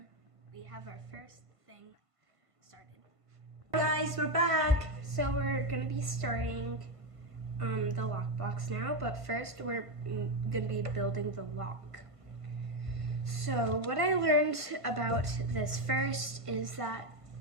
we have our first thing started. Guys, we're back. So we're gonna be starting the lockbox now, but first we're gonna be building the lock. So what I learned about this first is that,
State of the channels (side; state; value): left; late; 1.5 ms